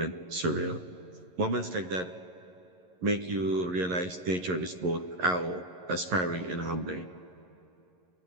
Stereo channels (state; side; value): late; left; 11 ms